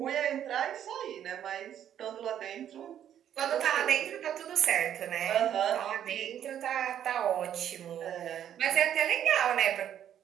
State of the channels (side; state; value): left; quieter; 10.1 dB